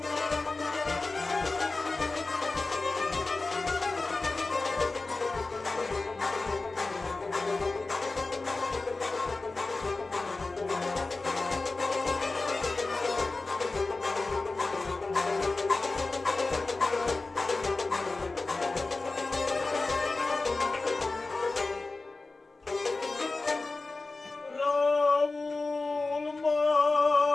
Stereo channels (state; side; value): quieter; right; 3.5 dB